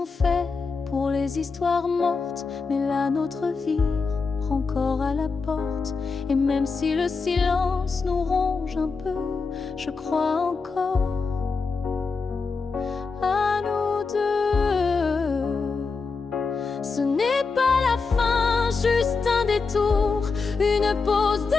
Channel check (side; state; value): right; quieter; 4.6 dB